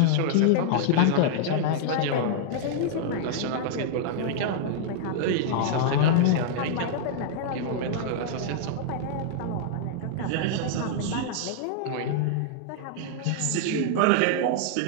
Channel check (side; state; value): both; different; correlation -0.01